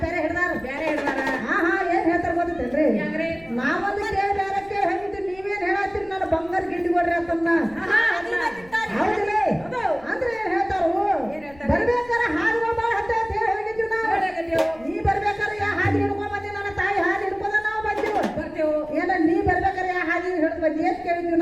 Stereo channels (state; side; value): noise; left; rumble, 24 dB below the sound